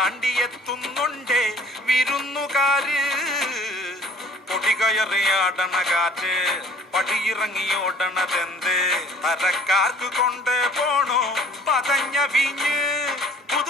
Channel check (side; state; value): both; normal; correlation 0.52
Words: വിരുന്നുകാര് പൊടികയറിയാടണ കാറ്റ് പടിയിറങ്ങിയോടണതെന്ത് തരക്കാർക്ക് കൊണ്ട് പോണോ പതഞ്ഞ വീഞ്ഞ്